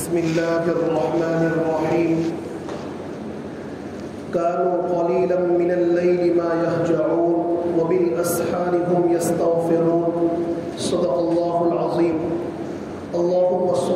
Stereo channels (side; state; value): both; identical; correlation 1.00